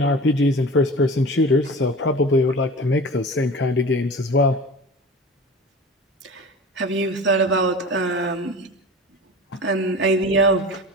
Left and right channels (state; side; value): normal; both; correlation 0.35